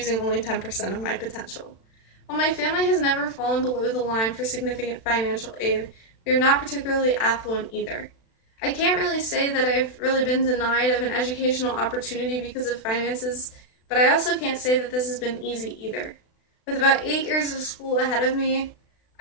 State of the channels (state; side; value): late; right; 36 ms